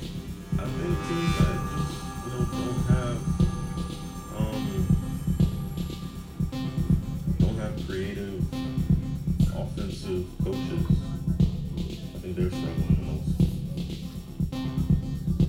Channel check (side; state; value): both; identical; correlation 1.00